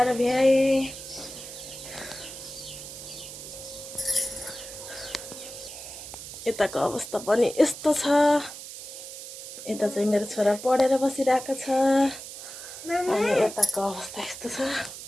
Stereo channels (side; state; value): right; noise; hiss, 12 dB below the sound